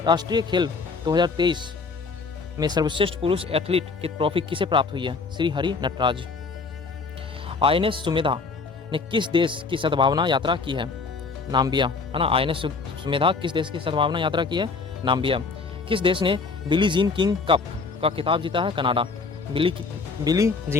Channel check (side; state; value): right; quieter; 4.5 dB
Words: खेल 2023 में सर्वश्रेष्ठ पुरुष एथलीट की ट्रॉफी किसे प्राप्त हुई है? श्री हरि नटराज। INS सुमेधा ने किस देश की सद्भावना यात्रा की है? नाम्बिया, है ना। INS सुमेधा किस देश की सद्भावना यात्रा की है? नाम्बिया। किस देश ने बिली जीन किंग कप का खिताब जीता है? Canada. Billie